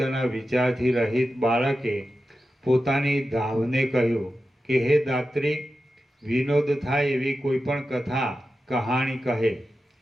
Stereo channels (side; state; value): both; normal; correlation 0.92